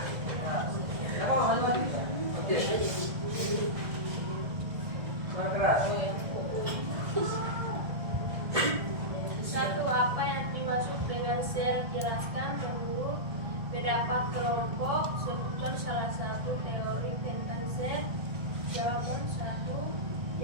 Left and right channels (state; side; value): late; left; 1.6 ms